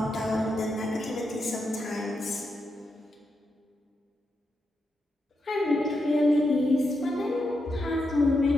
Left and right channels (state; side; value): normal; both; correlation 0.85